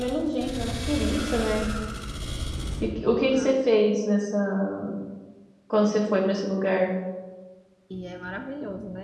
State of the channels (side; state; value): both; identical; correlation 1.00